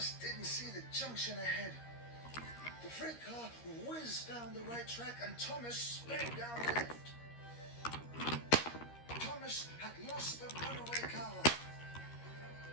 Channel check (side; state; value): right; late; 13 ms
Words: didn't see the junction ahead. The freight car whizzed down the right track and Thomas sped down the left. Thomas had lost the runaway car.